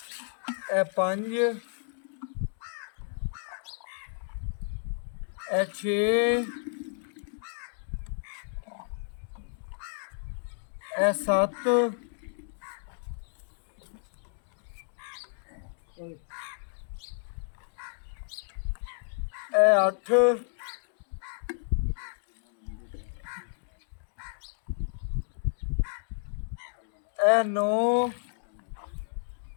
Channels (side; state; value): right; silent; digital silence